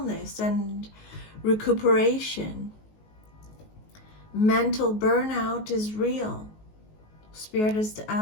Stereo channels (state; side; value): late; right; 19 ms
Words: and recuperation. Mental burnout is real. Spirit is